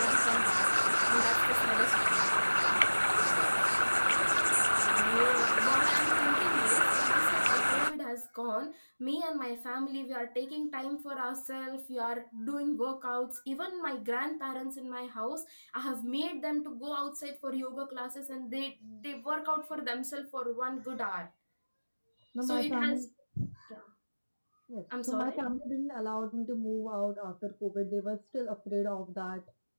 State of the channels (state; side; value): inverted; both; correlation -1.00